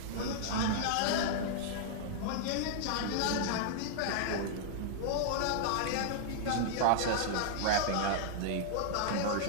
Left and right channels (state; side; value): different; both; correlation -0.01